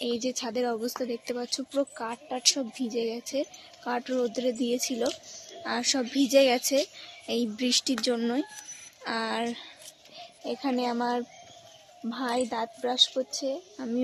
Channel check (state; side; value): identical; both; correlation 1.00